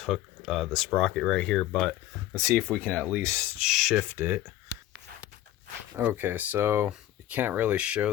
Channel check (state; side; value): quieter; right; 13.7 dB